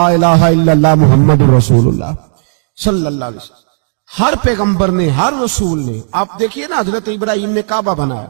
الہ الا اللہ محمد رسول اللہ صلی اللہ علیہ وسلم۔ ہر پیغمبر نے، ہر رسول نے، آپ دیکھیے نا حضرت ابراہیم نے کعبہ بنایا۔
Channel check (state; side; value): silent; left; digital silence